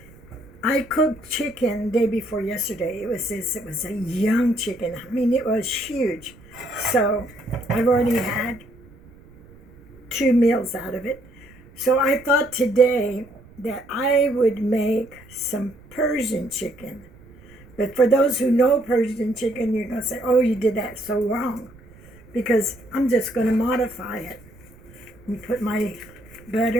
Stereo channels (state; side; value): noise; right; rumble, 24 dB below the sound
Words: I cooked chicken day before yesterday. It was a young chicken. I mean, it was huge. So I've already had 2 meals out of it. So I thought today that I would make some Persian chicken. But for those who know Persian chicken, you're going to say, oh, you did that so wrong. Because I'm just going to modify it. And put my